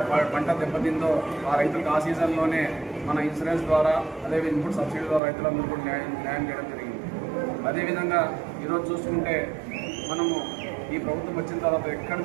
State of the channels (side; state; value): left; drops out; at 5.2 s